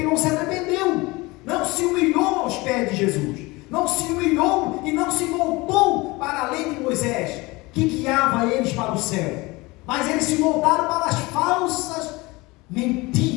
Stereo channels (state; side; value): quieter; right; 23.0 dB